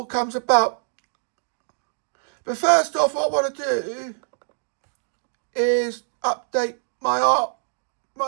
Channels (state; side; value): silent; left; digital silence